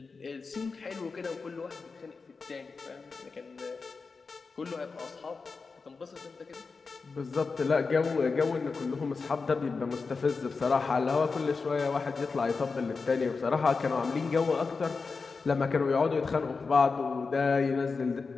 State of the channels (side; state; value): right; quieter; 4.5 dB